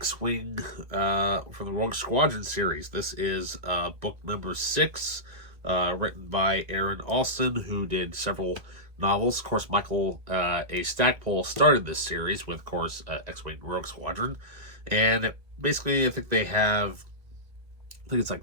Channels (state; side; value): late; left; 1.6 ms